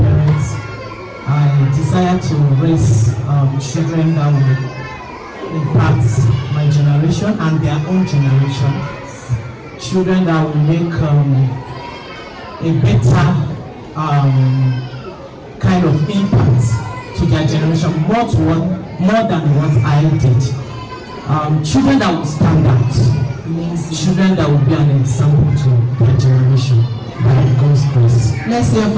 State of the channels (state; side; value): identical; both; correlation 1.00